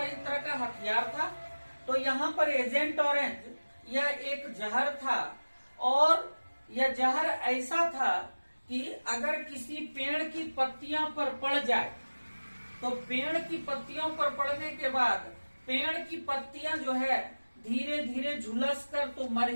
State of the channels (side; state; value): both; inverted; correlation -1.00